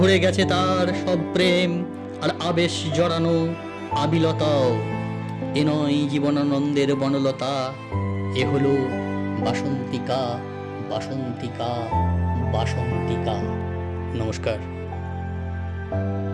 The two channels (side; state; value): both; identical; correlation 1.00